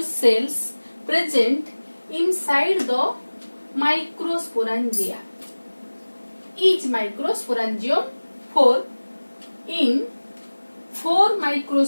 cells present inside the microsporangia. Each microsporangium 4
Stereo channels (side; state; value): both; inverted; correlation -1.00